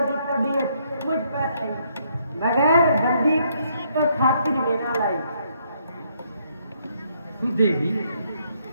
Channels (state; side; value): inverted; both; correlation -0.72